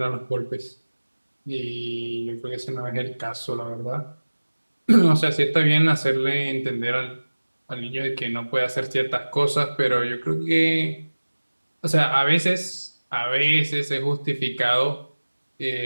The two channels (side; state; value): both; inverted; correlation -1.00